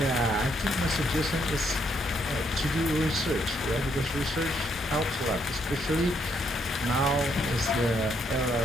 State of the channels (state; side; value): normal; both; correlation 0.74